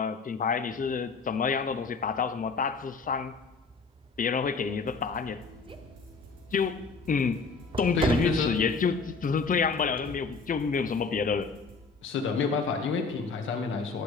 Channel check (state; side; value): quieter; right; 4.6 dB